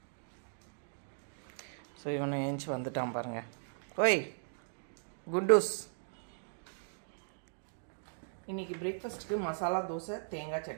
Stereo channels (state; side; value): silent; left; digital silence